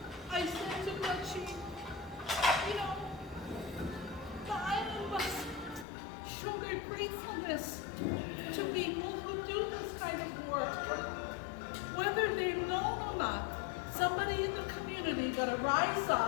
I said to her, the island must show their gratefulness to people who do this kind of work. Whether they're known or not, somebody in the community got to rise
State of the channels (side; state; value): right; drops out; at 5.9 s